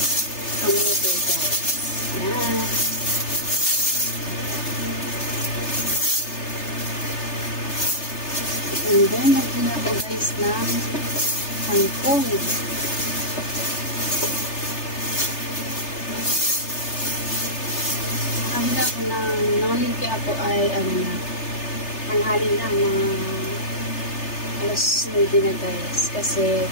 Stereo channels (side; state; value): right; late; 3.3 ms